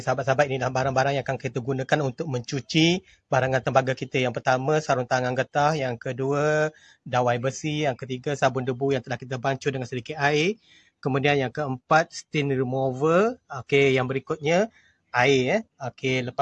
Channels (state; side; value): identical; both; correlation 1.00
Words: sahabat-sahabat, inilah barang-barang yang akan kita gunakan untuk mencuci barangan tembaga kita. Yang pertama, sarung tangan getah. Yang kedua, dawai besi. Yang ketiga, sabun debu yang telah kita bancuh dengan sedikit air. Kemudian yang keempat, stain remover. Okey, yang berikutnya air. Okey,